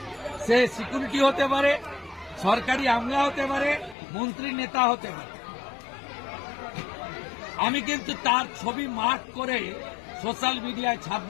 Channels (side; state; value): right; drops out; at 4.0 s